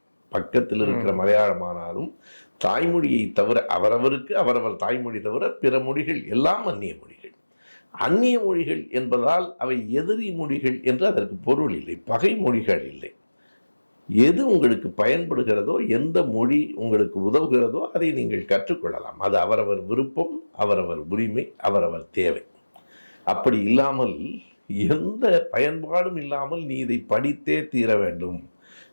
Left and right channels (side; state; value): both; inverted; correlation -1.00